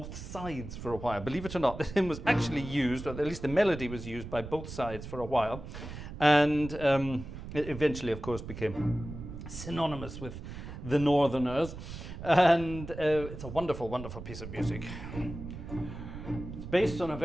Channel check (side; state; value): right; noise; rumble, 10 dB below the sound